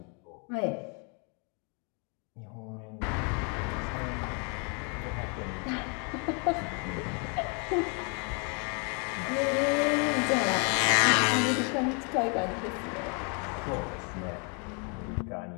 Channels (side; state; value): right; quieter; 36.5 dB